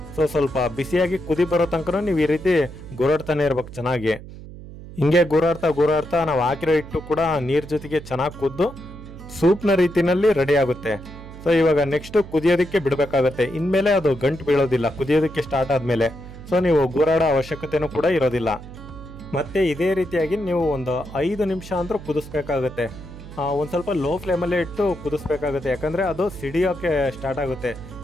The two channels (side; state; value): right; noise; hum, 15 dB below the sound